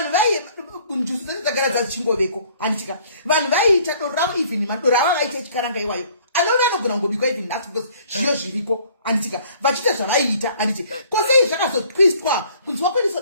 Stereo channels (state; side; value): inverted; both; correlation -0.57